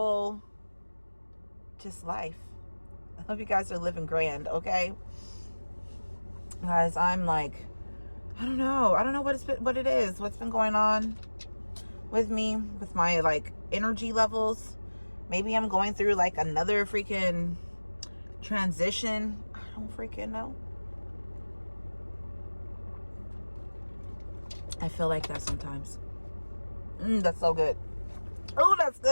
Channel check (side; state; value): both; inverted; correlation -1.00